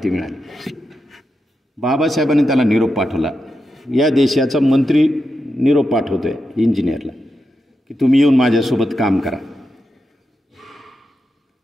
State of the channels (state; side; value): normal; both; correlation 0.87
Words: मिळाली. बाबासाहेबांनी त्याला निरोप पाठवला. या देशाचा मंत्री निरोप पाठवतोय इंजिनियरला की तुम्ही येऊन माझ्यासोबत काम करा.